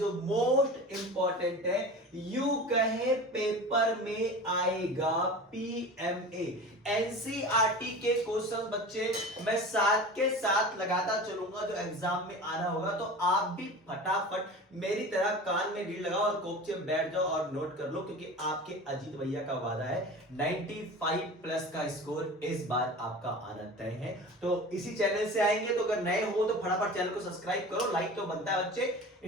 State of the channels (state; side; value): normal; both; correlation 0.35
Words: मोस्ट इंपॉर्टेंट है। यू कहे पेपर में आएगा पीएमए। एनसीईआरटी के क्वेश्चन बच्चे मैं साथ के साथ लगाता चलूंगा जो एग्जाम में आना होगा, तो आप भी फटाफट मेरी तरह कान में रील लगाओ और कोपचे में बैठ जाओ और नोट कर लो, क्योंकि आपके अजीत भैया का वादा है 95 प्लस का स्कोर इस बार आपका आना तय है। तो इसी चैनल से आएंगे, तो अगर नए हो तो फटाफट चैनल को सब्सक्राइब करो, लाइक तो बनता है बच्चे।